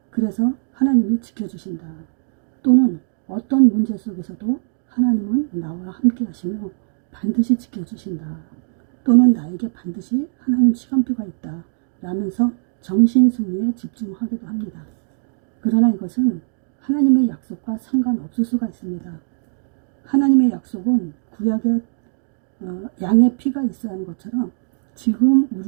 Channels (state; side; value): silent; left; digital silence